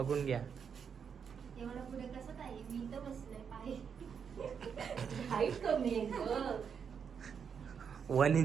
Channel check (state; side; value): quieter; left; 6.9 dB